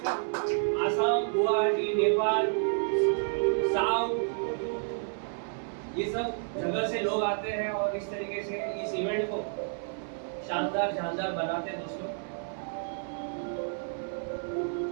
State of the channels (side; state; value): left; silent; 58 dB below the other